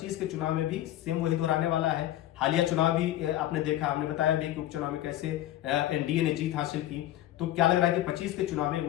के चुनाव में भी सेम वही दोहराने वाला है? हालिया चुनाव भी आपने देखा, हमने बताया भी कि उपचुनाव में कैसे एनडीए ने जीत हासिल की। तो क्या लग रहा है कि 25 के चुनाव में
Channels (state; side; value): quieter; right; 13.9 dB